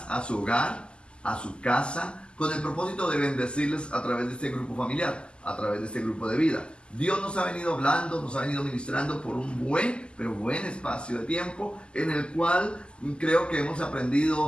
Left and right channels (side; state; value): right; late; 0.050 ms